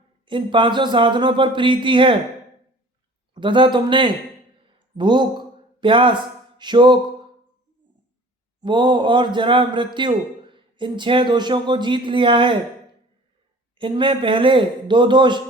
इन पांचों साधनों पर प्रीति है तथा तुमने भूख, प्यास, शोक, मोह और जरा, मृत्यु, इन 6 दोषों को जीत लिया है। इनमें पहले 2 दोष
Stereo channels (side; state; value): both; normal; correlation 0.47